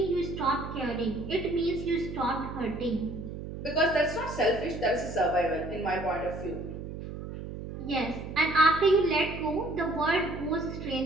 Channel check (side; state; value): right; noise; hum, 9 dB below the sound